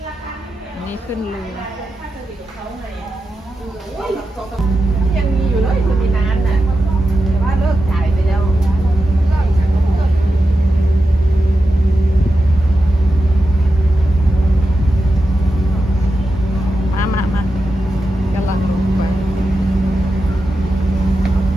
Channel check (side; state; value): both; normal; correlation 0.90